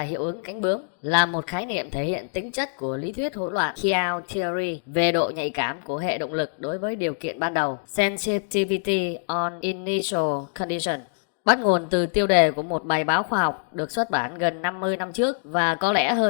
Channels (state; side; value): silent; right; digital silence